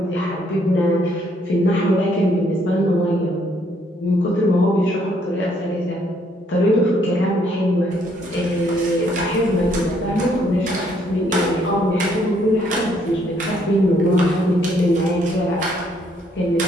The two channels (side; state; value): both; normal; correlation 0.68